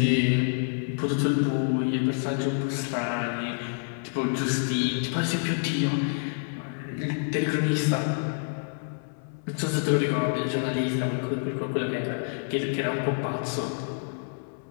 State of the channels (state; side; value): silent; right; 60 dB below the other